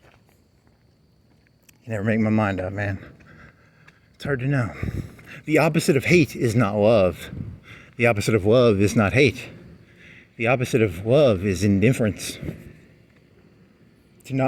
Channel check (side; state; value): both; identical; correlation 1.00